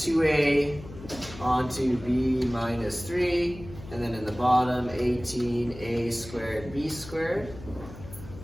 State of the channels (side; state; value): left; noise; hum, 15 dB below the sound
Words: onto B minus 3, and then in the bottom 18A squared B squared.